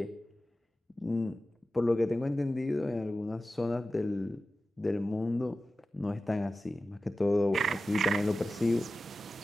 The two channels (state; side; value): normal; both; correlation 0.94